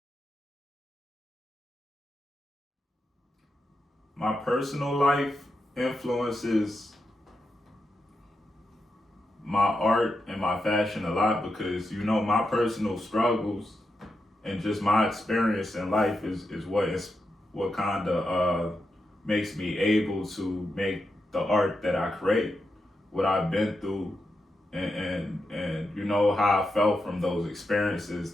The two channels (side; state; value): both; normal; correlation 0.86